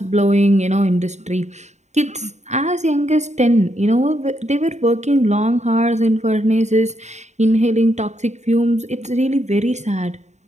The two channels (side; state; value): left; late; 0.33 ms